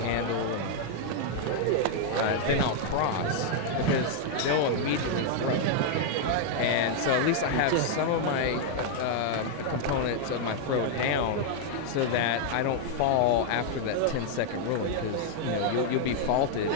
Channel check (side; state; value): both; different; correlation 0.00